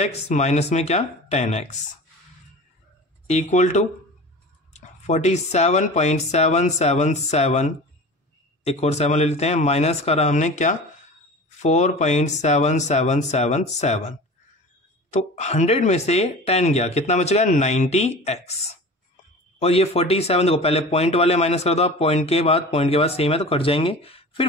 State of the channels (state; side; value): normal; both; correlation 0.36